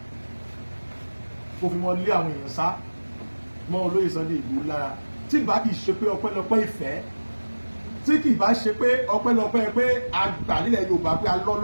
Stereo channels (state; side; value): inverted; both; correlation -1.00